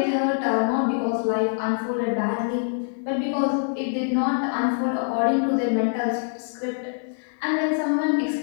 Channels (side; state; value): right; silent; digital silence